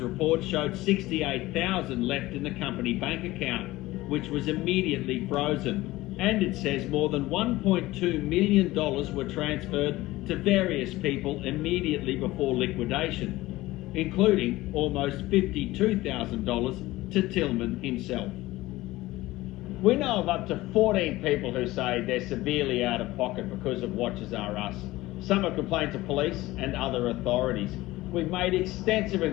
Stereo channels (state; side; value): quieter; right; 18.2 dB